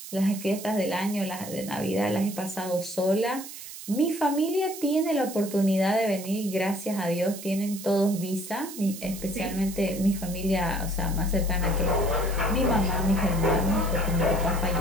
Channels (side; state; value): right; noise; hiss, 12 dB below the sound